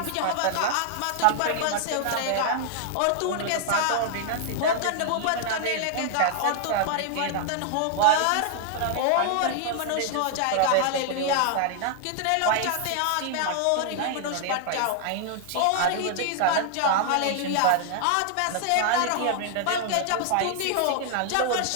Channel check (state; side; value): different; both; correlation 0.00